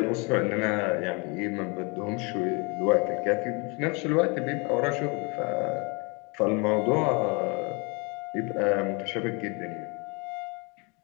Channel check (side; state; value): right; quieter; 30.7 dB